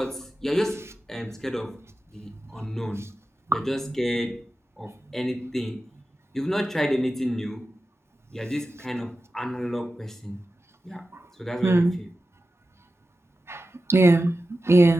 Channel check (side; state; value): both; normal; correlation 0.93